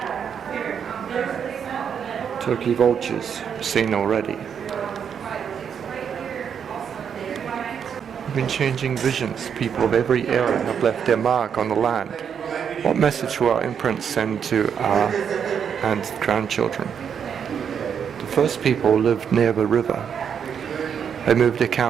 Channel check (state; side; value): quieter; left; 7.6 dB